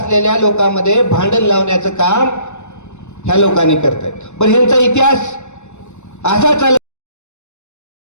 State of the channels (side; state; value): right; late; 0.83 ms